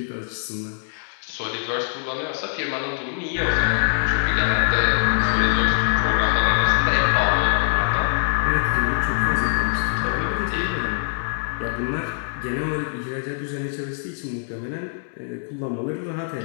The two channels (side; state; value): right; silent; 62 dB below the other